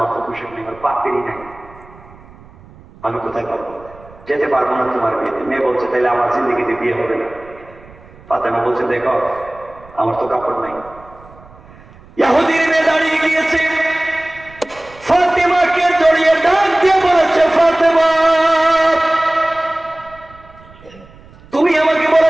তো পোশাক নেই, আমার পাপেরই নাই, আমি কোথায় পাবো? যেতে পারবো না তোমার বিয়েতে। মেয়ে বলছে তাহলে আমার জিন্দেগিতে বিয়ে হবে না। ফাতেমা বলছে দেখো আমার তো কাপড় নাই। ইহুদির মেয়ে দাঁড়িয়ে গিয়েছে, ফাতেমাকে জড়িয়ে ডাক দিয়ে বলেছে, ফাতেমা তুমি আমাকে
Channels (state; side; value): noise; right; rumble, 23 dB below the sound